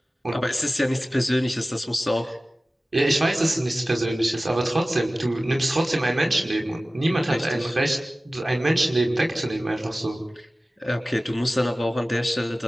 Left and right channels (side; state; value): both; normal; correlation 0.97